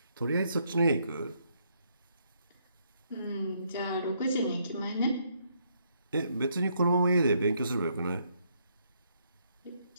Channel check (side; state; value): both; inverted; correlation -0.73